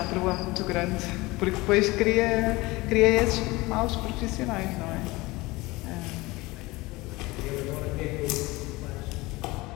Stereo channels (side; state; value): right; quieter; 21.6 dB